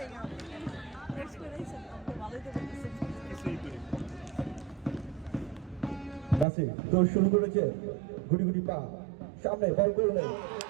নাসির দৌড় শুরু করেছে, গুটি গুটি পা সামনে বল করলেন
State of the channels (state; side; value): drops out; left; at 6.5 s